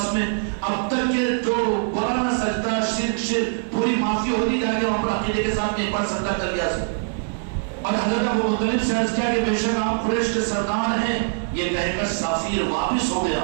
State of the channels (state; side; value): silent; left; 63 dB below the other